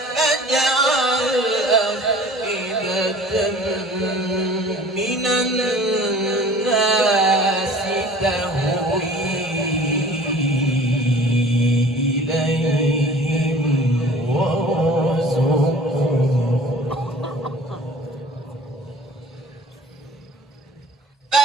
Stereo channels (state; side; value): normal; both; correlation 0.46